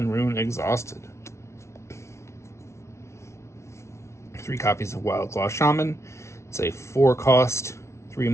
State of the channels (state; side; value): late; right; 0.13 ms